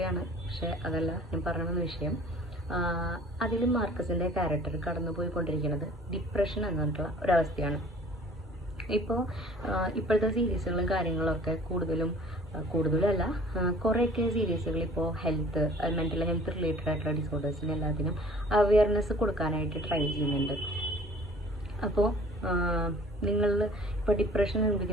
പക്ഷേ അതല്ല ഞാൻ പറഞ്ഞ വിഷയം. അതിൽ മാർക്കസിൻ്റെ ക്യാരക്ടർ കടന്നു പോയിക്കൊണ്ടിരിക്കുന്നത് ഡിപ്രഷൻ എന്ന് പറഞ്ഞിട്ടുള്ള ഒരവസ്ഥയാണ്. ഇപ്പോഴത്തെ സീരീസുകളും കാര്യങ്ങളൊക്കെ കൂടുതലല്ല, കുറേയൊക്കെ സീരീസുകൾ ഇപ്പോൾ മെൻ്റൽ ഹെൽത്ത് റിലേറ്റഡ് ആയിട്ടുള്ള ഡിസോർഡേഴ്സിന് എല്ലാത്തിനും അവയർനെസ് കൊടുക്കാനായിട്ട് ട്രൈ ചെയ്യുന്നുണ്ട്. അപ്പോൾ നിങ്ങൾ ഇപ്പോൾ ഡിപ്രഷൻ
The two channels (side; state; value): both; normal; correlation 0.51